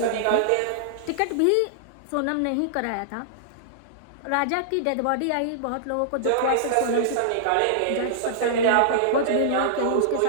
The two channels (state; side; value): different; both; correlation -0.01